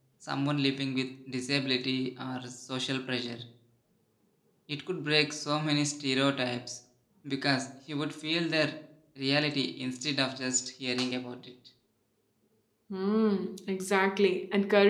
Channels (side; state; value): both; identical; correlation 1.00